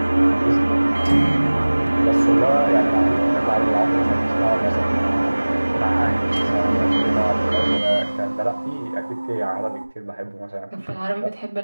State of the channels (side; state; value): both; inverted; correlation -1.00